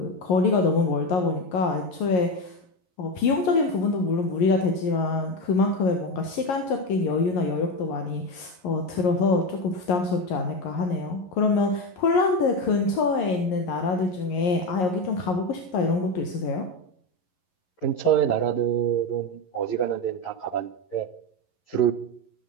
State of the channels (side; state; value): right; late; 11 ms